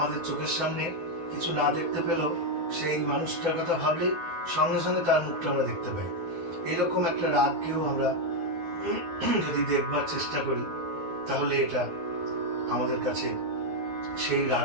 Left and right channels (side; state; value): left; late; 12 ms